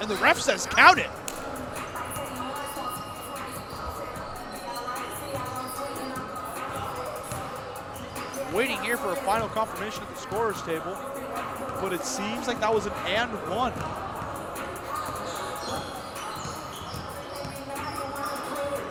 the ref says count it. Waiting here for a final confirmation at the scorer's table, but it seems like that was an and one.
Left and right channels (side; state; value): both; identical; correlation 1.00